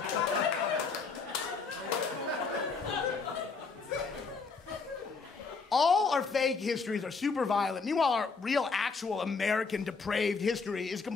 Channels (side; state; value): right; quieter; 4.7 dB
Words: All our fake histories are super violent. Meanwhile, our real, actual American depraved history is